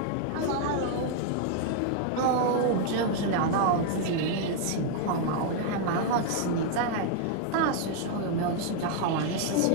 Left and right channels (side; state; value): both; different; correlation 0.00